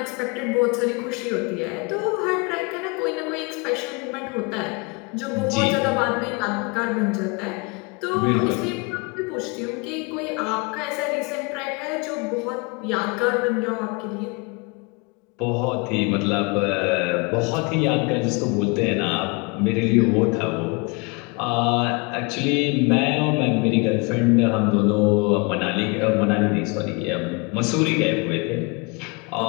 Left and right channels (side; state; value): right; quieter; 29.7 dB